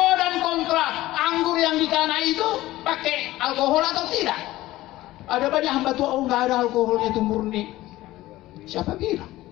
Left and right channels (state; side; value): quieter; right; 16.7 dB